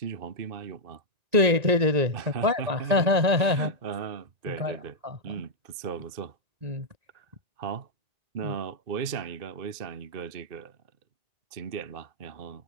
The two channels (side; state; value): left; late; 1.9 ms